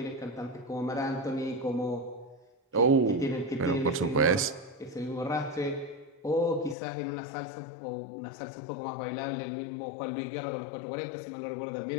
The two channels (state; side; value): drops out; right; at 6.8 s